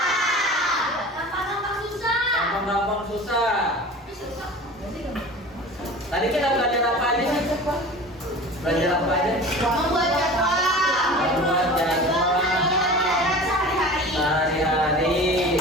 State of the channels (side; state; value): both; normal; correlation 0.37